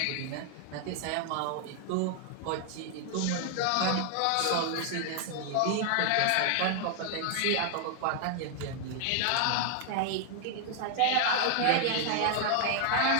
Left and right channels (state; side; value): different; both; correlation 0.00